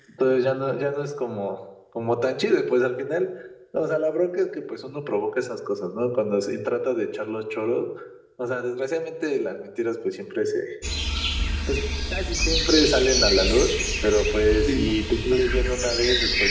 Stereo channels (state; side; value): identical; both; correlation 1.00